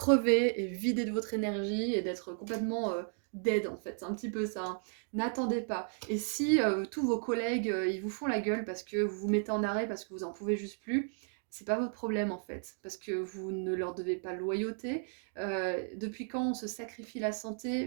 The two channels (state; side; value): silent; left; 55 dB below the other